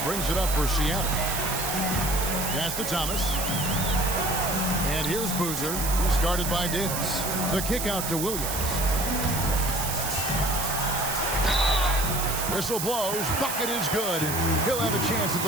brings it up for Seattle. Pass to Thomas. And here's Boozer, who's guarded by Davis. The kick out to Williams. Whistle blows. Bucket is good. He'll have a chance at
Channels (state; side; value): noise; right; hiss, 3 dB below the sound